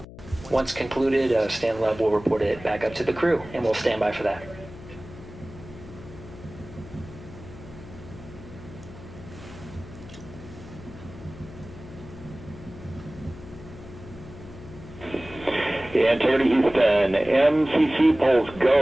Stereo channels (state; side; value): noise; left; hum, 16 dB below the sound